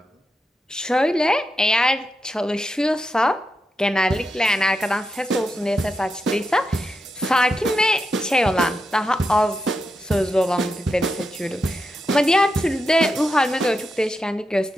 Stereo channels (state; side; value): normal; both; correlation 0.86